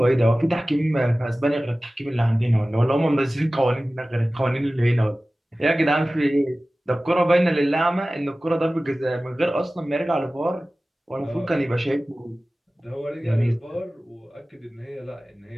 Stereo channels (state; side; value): normal; both; correlation 0.97